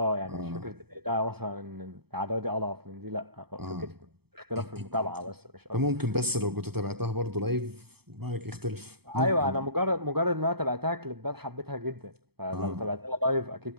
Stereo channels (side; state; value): left; late; 0.97 ms